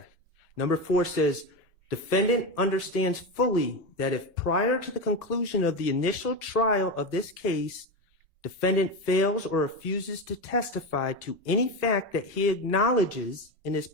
Number 4 says, defendant understands fully that if prior to the conclusion of the initial trial of this case, defendant fails or refuses to testify to any fact that he acknowledges in his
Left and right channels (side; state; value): both; normal; correlation 0.18